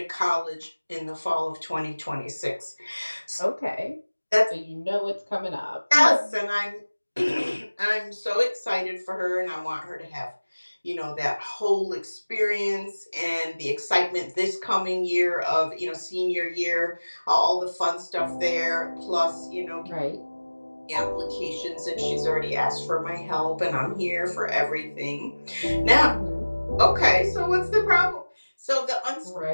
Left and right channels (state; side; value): inverted; both; correlation -1.00